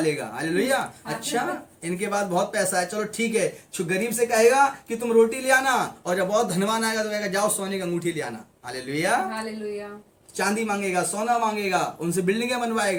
हालेलुया। अच्छा, इनके पास बहुत पैसा है, चलो ठीक है। जो गरीब से कहेगा कि तुम रोटी ले आना, और जब बहुत धनवान आएगा तो कहेगा जाओ सोने की अंगूठी ले आना। हालेलुया। हालेलुया। चांदी मांगेगा, सोना मांगेगा, उनसे बिल्डिंगें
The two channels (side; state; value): both; identical; correlation 1.00